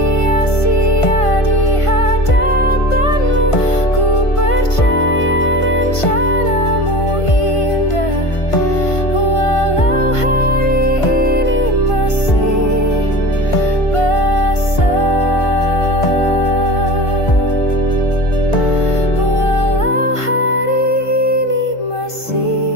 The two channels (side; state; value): right; late; 1.5 ms